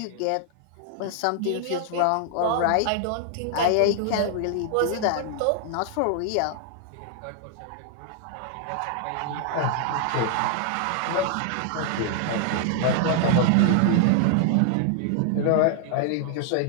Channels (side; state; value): both; different; correlation 0.00